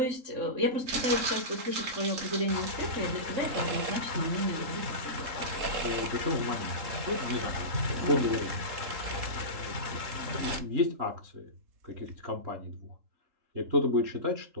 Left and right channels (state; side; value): late; left; 3.7 ms